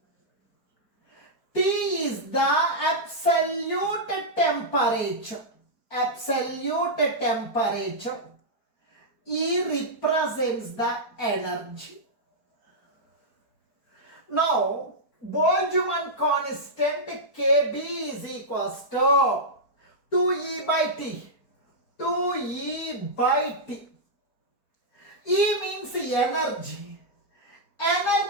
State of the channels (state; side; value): late; right; 4.5 ms